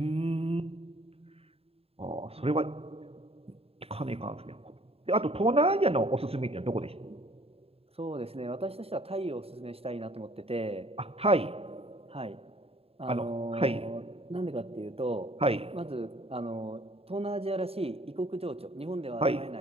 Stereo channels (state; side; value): late; left; 0.28 ms